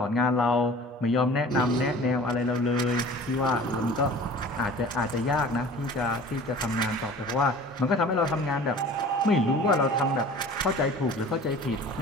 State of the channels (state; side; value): normal; both; correlation 0.43